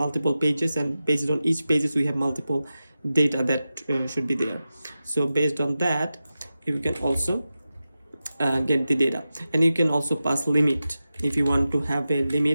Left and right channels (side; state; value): both; inverted; correlation -0.93